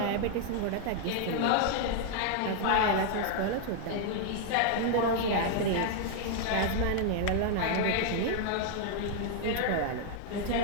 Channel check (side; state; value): both; different; correlation 0.00